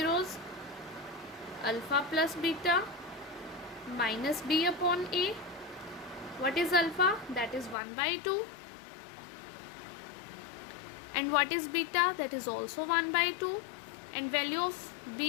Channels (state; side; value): drops out; right; at 7.8 s